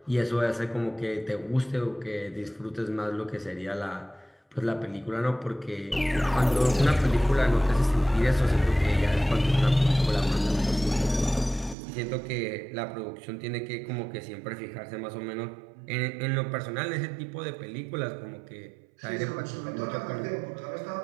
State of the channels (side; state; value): left; drops out; at 11.8 s